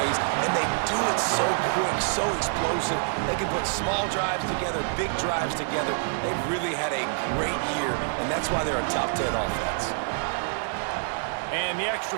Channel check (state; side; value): silent; left; digital silence